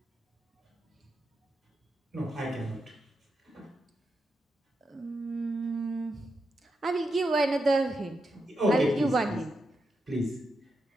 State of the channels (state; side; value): normal; both; correlation 0.86